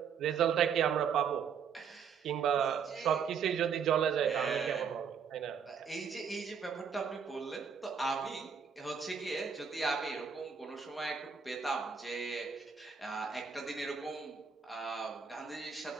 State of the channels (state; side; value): quieter; left; 6.6 dB